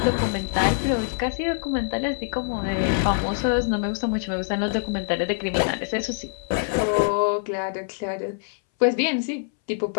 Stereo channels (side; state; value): right; silent; 62 dB below the other